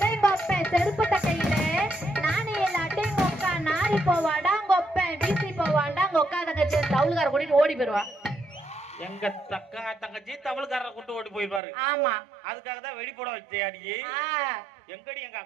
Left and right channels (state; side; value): drops out; left; at 11.6 s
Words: கொப்பை செருப்பு கட்டையில, நானே இல்லாட்டி கொக்கா நாரி போவாடா கொப்பை வீசி போவாண்டா கொக்கா தங்கச்சி தவுளுக்கார கூட்டிட்டு ஓடி போயிருவா. எங்க தங்கச்சி தமிழ்காரரை கூட்டு ஓடி போயிருப்பாரு. ஆமா, அதுக்காக தான் வெடி போட வச்சேடி. எங்கடி எங்க